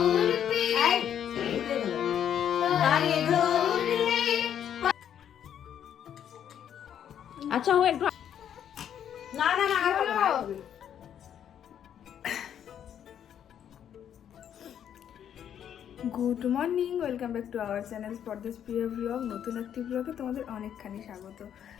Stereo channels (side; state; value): right; quieter; 9.4 dB